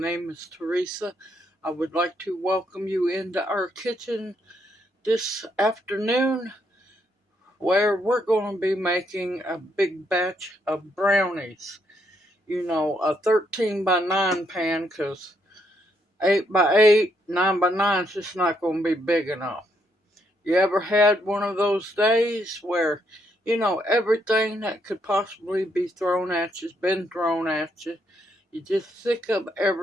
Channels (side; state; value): both; normal; correlation 0.75